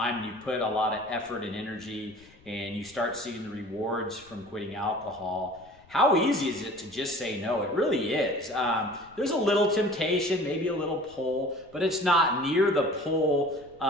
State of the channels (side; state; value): left; noise; rumble, 27 dB below the sound